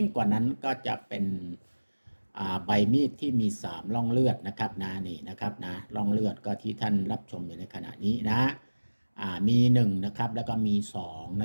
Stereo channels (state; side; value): inverted; both; correlation -1.00